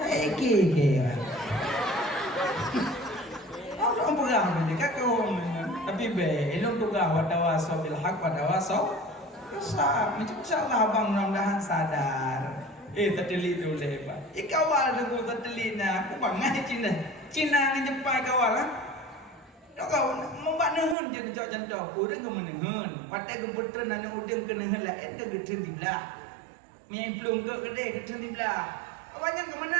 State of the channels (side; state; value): left; drops out; at 21.0 s